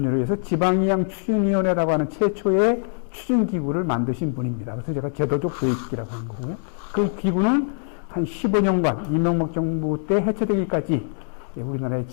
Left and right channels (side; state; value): right; silent; digital silence